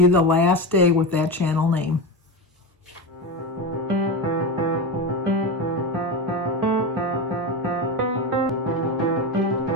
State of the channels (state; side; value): normal; both; correlation 0.19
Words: the last day with that channel name.